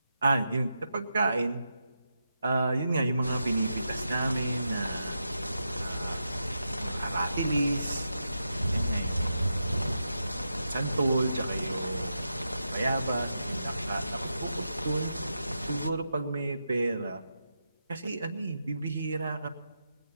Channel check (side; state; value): both; inverted; correlation -0.87